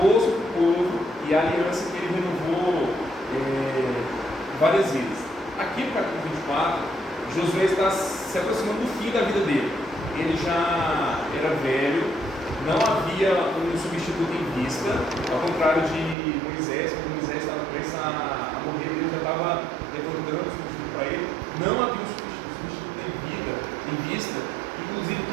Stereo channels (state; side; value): drops out; left; at 16.2 s